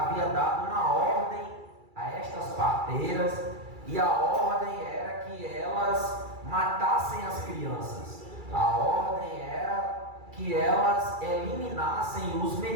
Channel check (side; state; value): left; late; 2.3 ms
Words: dado uma ordem a estas parteiras, e a ordem era que elas matassem as crianças. A ordem era que elas eliminassem os